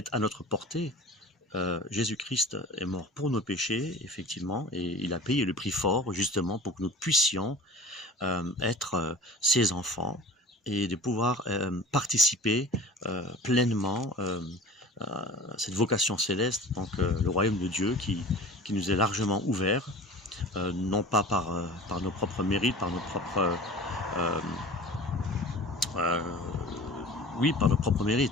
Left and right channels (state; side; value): normal; both; correlation 0.40